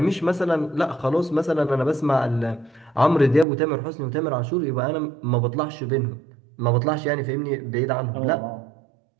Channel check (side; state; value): left; drops out; at 3.5 s